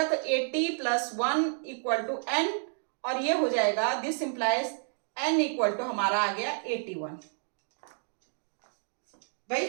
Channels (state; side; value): silent; left; 58 dB below the other